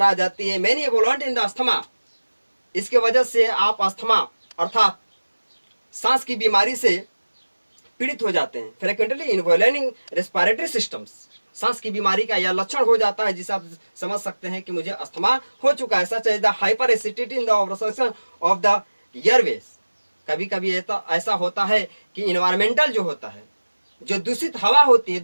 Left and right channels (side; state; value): both; inverted; correlation -1.00